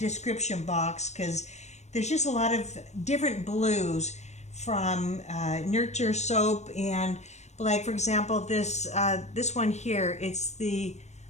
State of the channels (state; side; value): late; right; 0.33 ms